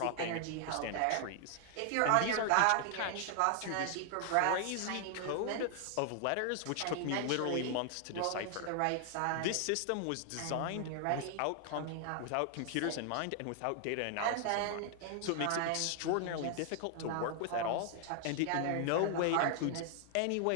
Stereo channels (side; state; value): both; different; correlation 0.00